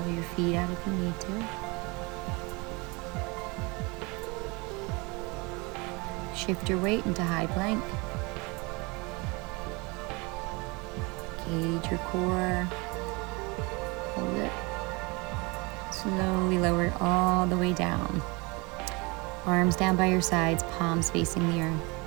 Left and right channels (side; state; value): left; quieter; 27.1 dB